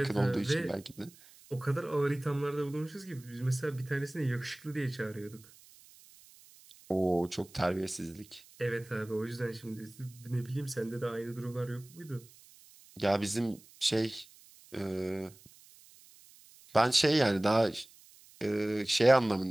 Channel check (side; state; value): right; noise; hiss, 24 dB below the sound